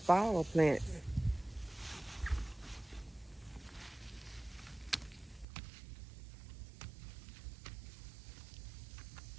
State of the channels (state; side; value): drops out; left; at 5.5 s